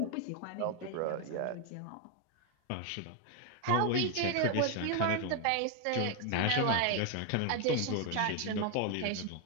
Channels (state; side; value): different; both; correlation 0.01